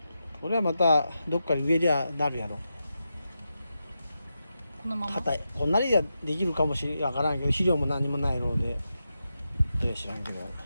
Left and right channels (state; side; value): inverted; both; correlation -0.88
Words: これはまたどっかに植えりゃなるやろ。このまま？硬い。こんなにはできるかもしれんからんけど、肥料も何もないので、知らんけど、